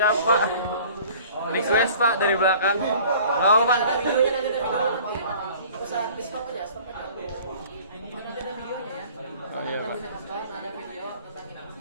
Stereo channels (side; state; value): both; inverted; correlation -0.48